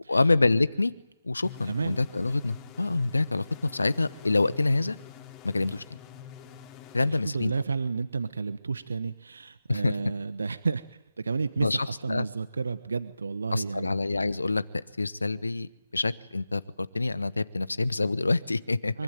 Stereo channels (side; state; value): both; inverted; correlation -0.94